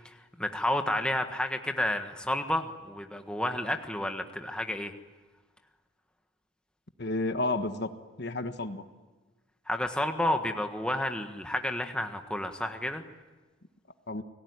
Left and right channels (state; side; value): normal; both; correlation 0.68